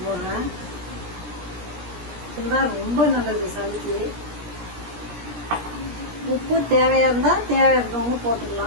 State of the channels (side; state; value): left; late; 17 ms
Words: போடுறேன். இதுதான் ரொம்ப நல்லது சளிக்கு. உப்பு தேவையா இருந்தா தேவையானவங்க